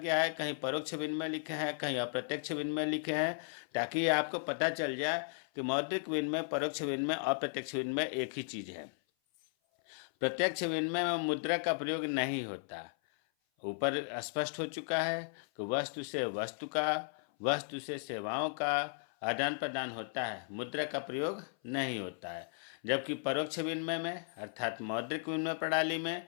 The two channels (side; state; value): right; silent; 54 dB below the other